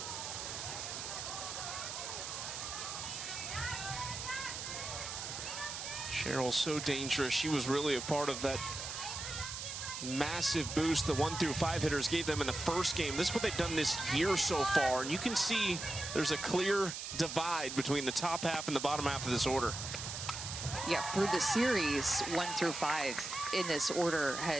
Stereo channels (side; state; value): right; noise; hiss, 6 dB below the sound